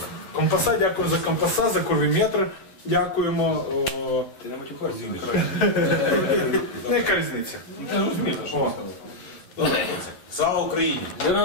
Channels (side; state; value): right; late; 11 ms